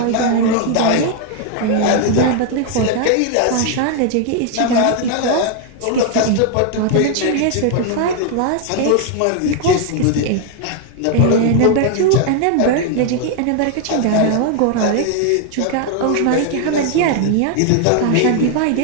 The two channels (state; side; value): different; both; correlation 0.00